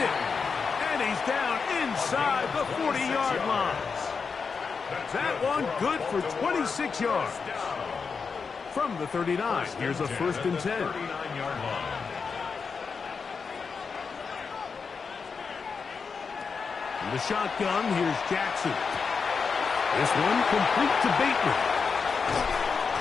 And he's down inside the 40-yard line. That one good for 26 yards. From the 39, here's a first and 10. 39-yard line. In the shotgun, here's Jackson. This one complete to Bateman.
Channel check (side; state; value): right; quieter; 5.4 dB